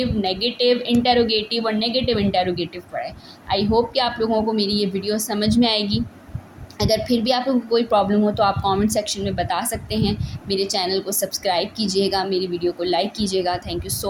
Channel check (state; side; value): identical; both; correlation 1.00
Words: नेगेटिव इंटेरोगेटिव और नेगेटिव इंटेरोगेटिव पढ़ाए। आई होप कि आप लोगों को मेरी ये वीडियो समझ में आएगी। अगर फिर भी आप लोगों को कोई प्रॉब्लम हो तो आप कमेंट सेक्शन में बता सकते हैं। मेरे चैनल को सब्सक्राइब कीजिएगा, मेरी वीडियो को लाइक कीजिएगा। Thank you